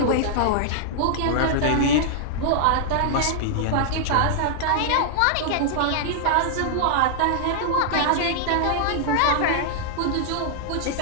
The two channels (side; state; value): both; different; correlation -0.01